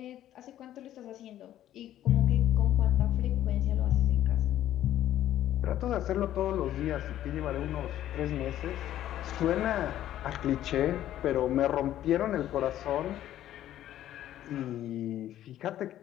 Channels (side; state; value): right; quieter; 12.4 dB